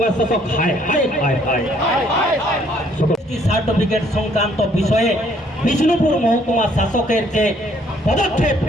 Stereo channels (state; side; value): normal; both; correlation 0.64